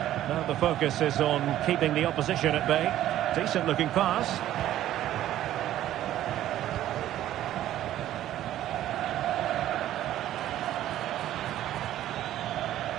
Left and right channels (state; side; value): quieter; left; 12.9 dB